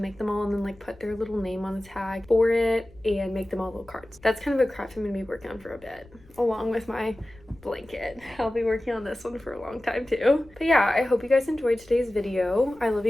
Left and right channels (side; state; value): left; noise; rumble, 26 dB below the sound